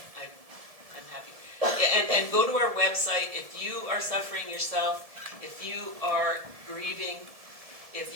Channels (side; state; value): left; late; 1.7 ms